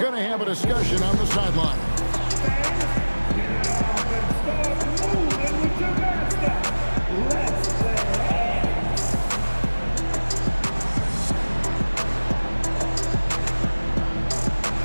to have a discussion on the sideline.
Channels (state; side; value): inverted; both; correlation -1.00